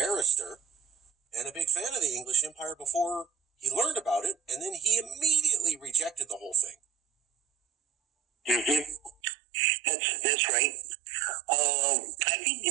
and a big fan of the English Empire before he learned about it, and then he immediately rejected the whole thing. That's right. I think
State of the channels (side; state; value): left; drops out; at 9.1 s